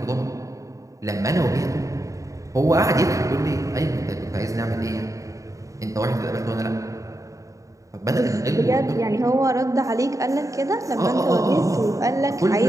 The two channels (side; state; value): left; late; 0.16 ms